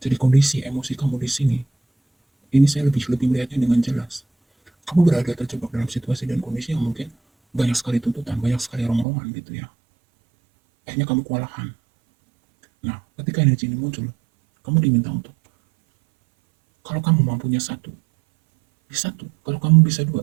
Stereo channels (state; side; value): drops out; left; at 9.1 s